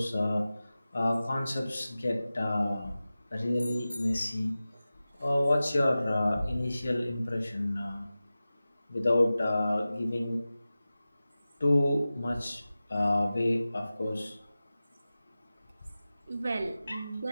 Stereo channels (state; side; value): inverted; both; correlation -0.96